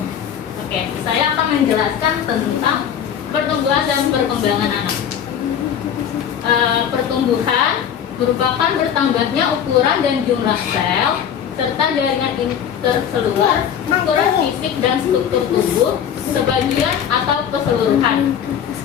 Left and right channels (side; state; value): right; quieter; 8.8 dB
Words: Oke, saya akan menjelaskan tentang pertumbuhan dan perkembangan anak. Pertumbuhan merupakan bertambahnya ukuran dan jumlah sel serta jaringan interseluler, ukuran fisik dan struktur tubuh sebagian atau keseluruhan,